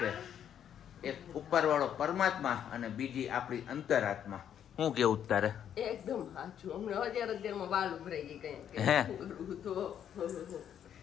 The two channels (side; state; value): right; quieter; 9.4 dB